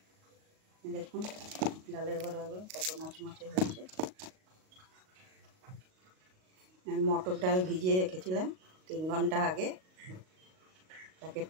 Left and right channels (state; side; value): late; left; 38 ms